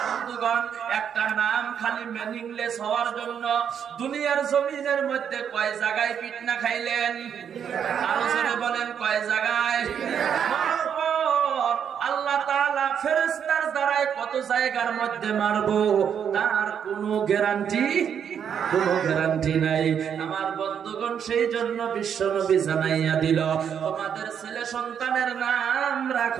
একটা নাম খালি মিনিংলেস হওয়ার জন্য দুনিয়ার জমিনের মধ্যে কয় জায়গায় পিটনা খাইলেন? আরো জোরে বলেন, কয় জায়গায়? আল্লাহ তাআলা ফেরেশতার দ্বারাই কত জায়গার মধ্যে মারবো তার কোনো গ্যারান্টি নাই। আমার বন্ধুগণ, সেই জন্য বিশ্বনবী জানাইয়া দিল, তোমাদের ছেলে সন্তানের নাম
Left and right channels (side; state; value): left; quieter; 8.1 dB